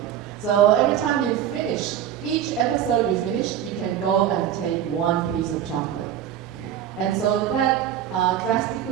So every time you finish, each episode you finish, you can go and take one piece of chocolate. And so that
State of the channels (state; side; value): quieter; left; 10.3 dB